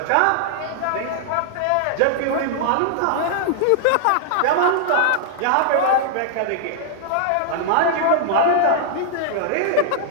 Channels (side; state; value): both; different; correlation -0.01